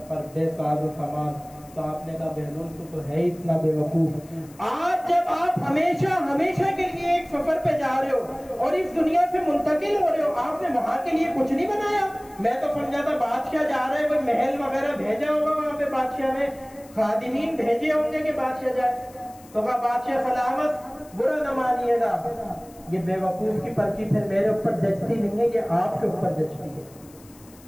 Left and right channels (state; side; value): noise; left; hiss, 24 dB below the sound